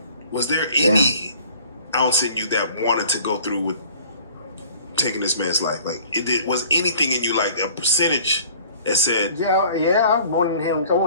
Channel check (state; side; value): inverted; both; correlation -0.51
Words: Was there any ounce in you that wanted to go through with taking this man's life? Like, was anything in you, like a percentage that said, Yeah, I wanted